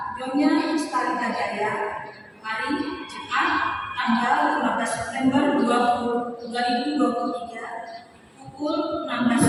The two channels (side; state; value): both; identical; correlation 1.00